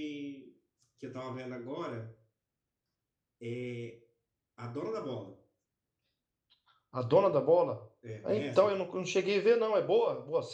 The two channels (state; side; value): identical; both; correlation 1.00